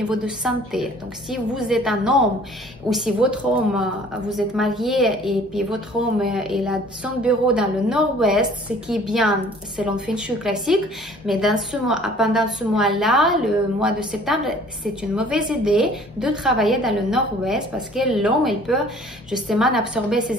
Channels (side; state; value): both; normal; correlation 0.52